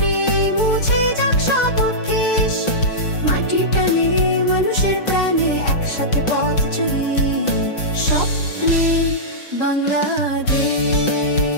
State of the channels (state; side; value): late; right; 5.8 ms